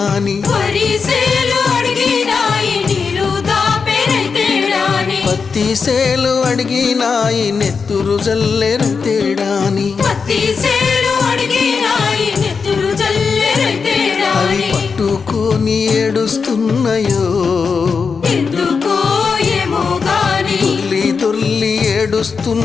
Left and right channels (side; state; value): right; quieter; 5.3 dB